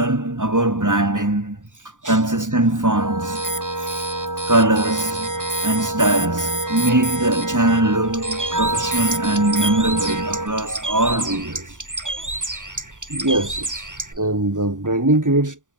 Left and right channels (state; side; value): late; left; 0.87 ms